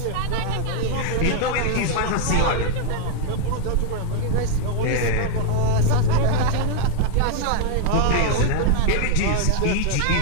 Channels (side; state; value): both; different; correlation 0.00